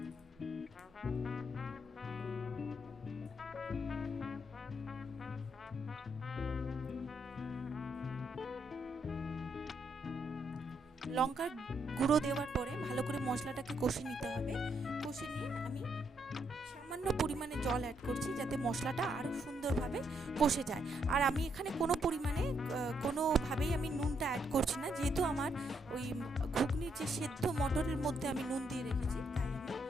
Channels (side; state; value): both; normal; correlation 0.76